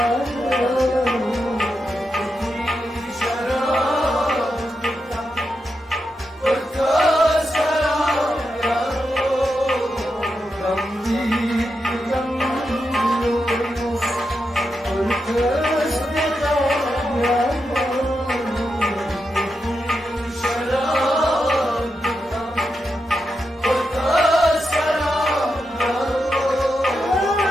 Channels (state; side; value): normal; both; correlation 0.86